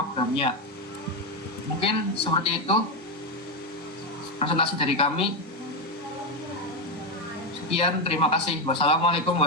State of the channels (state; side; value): normal; both; correlation 0.09